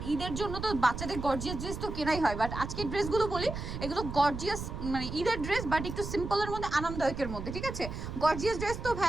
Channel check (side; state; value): right; noise; rumble, 7 dB below the sound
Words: ঈদের জন্য তো বাচ্চাদের গর্জিয়াস ড্রেস তো কেনাই হয়, বাট আজকের ড্রেসগুলো বলি এগুলো গর্জিয়াস, মানে ঈদের ড্রেস বাট একটু সিম্পলের মধ্যে, আরামদায়কের মধ্যে। ঠিক আছে, গর্জিয়াস ড্রেস তো